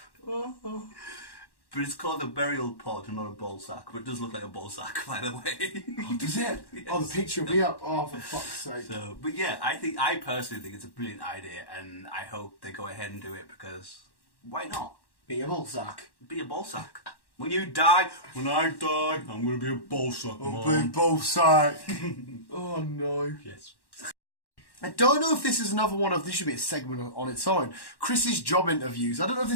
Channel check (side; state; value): right; late; 1.1 ms